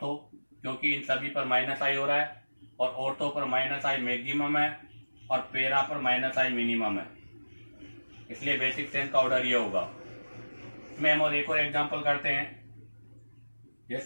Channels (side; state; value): both; inverted; correlation -1.00